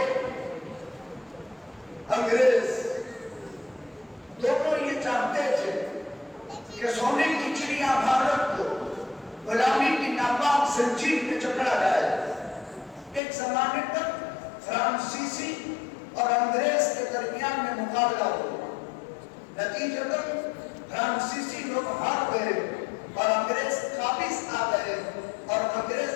انگریز دونوں یہ چاہتے تھے کہ سونے کی چڑیا بھارت کو غلامی کی ناپاک زنجیر میں جکڑا جائے. ایک زمانے تک فرانسیسی اور انگریز کے درمیان میں مقابلہ ہوا. نتیجتاً فرانسیسی لوگ ہار گئے اور انگریز قابض آ گئے اور انگریز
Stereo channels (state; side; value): drops out; right; at 13.2 s